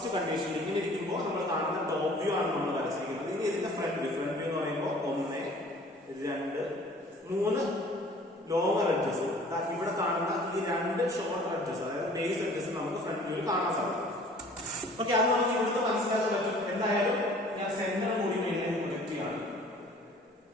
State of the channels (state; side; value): normal; both; correlation 0.51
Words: കണ്ടീഷൻ ഇങ്ങനെ ഇരിക്കുമ്പോൾ നമ്മൾ കാണുന്ന ടോപ്പ് വ്യൂ ആണ് നമ്മൾ വരച്ചിരിക്കുന്നത്. ഇനി ഇതിന്റെ ഫ്രണ്ട് വ്യൂ എന്ന് പറയുമ്പോൾ 1, 2, 3 ലോവർ എഡ്ജസ്. ഇവിടെ കാണുന്ന ഈ 2 ഷോർട്ട് എഡ്ജസ്, അതായത് ബേസ് എഡ്ജസ് നമുക്ക് ഫ്രണ്ട് വ്യൂവിൽ കാണാൻ സാധിക്കും. ഓക്കെ, അത് നമുക്ക് ഇവിടുന്ന് മനസ്സിലാക്കാൻ പറ്റും. എന്തായാലും ഞാൻ സെന്റർ കൂടി മേലെ പ്രൊജക്ട് ചെയ്യാണ്.